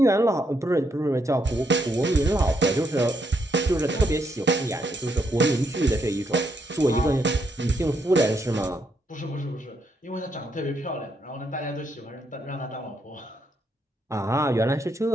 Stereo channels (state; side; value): normal; both; correlation 0.76